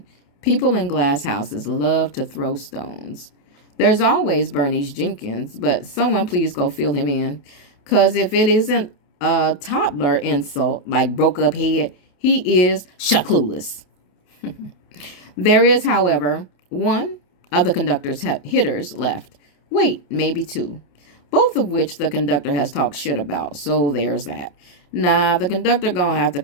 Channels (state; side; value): late; right; 28 ms